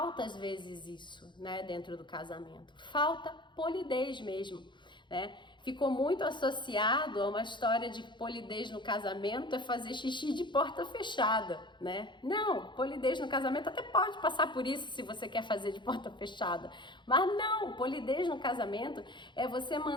às vezes isso, né, dentro do casamento. Falta polidez mesmo, né? Ficou muito associado a uma história de que polidez no casamento é fazer xixi de porta fechada, né? Não, polidez no casamento até pode passar por isso se você quer fazer de porta fechada, mas não, polidez no casamento é você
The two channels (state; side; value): late; right; 0.23 ms